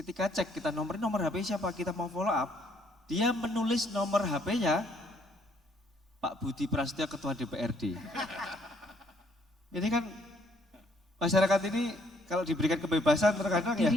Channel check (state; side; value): normal; both; correlation 0.66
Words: cek kita nomor HP siapa, kita mau follow up, dia menulis nomor HP-nya Pak Budi Prasetyo Ketua DPRD. Ini kan masyarakat ini kalau diberikan kebebasan terkadang ya